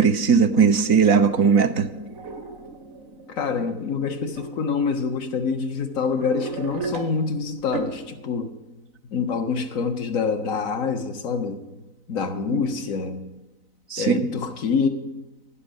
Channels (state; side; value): late; right; 3.9 ms